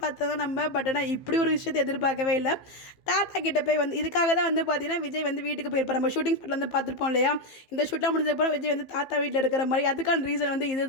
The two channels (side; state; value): right; late; 15 ms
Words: நம்ம. பட் ஆனால் இப்படி ஒரு விஷயத்தை எதிர்பார்க்கவே இல்லை. தாத்தா கிட்ட போய் இதுக்காக தான் பார்த்தீங்கன்னா விஜய் வீட்டுக்கு போயிருப்பார். நம்ம ஷூட்டிங் ஸ்பாட்டில் பார்த்துருப்போம் இல்லையா? இந்த ஷூட்லாம் முடிஞ்சதுக்கப்புறம் விஜய் தாத்தா வீட்டில் இருக்கிற மாதிரி. அதுக்கான ரீசன்